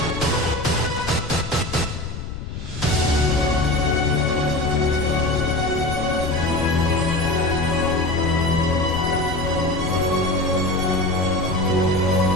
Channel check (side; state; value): left; noise; rumble, 8 dB below the sound